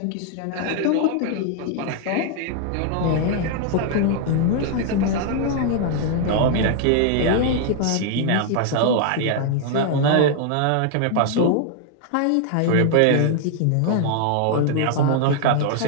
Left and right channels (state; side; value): different; both; correlation 0.00